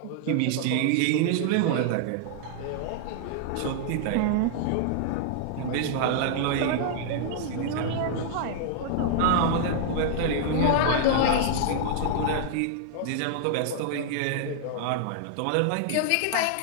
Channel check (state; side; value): different; both; correlation -0.01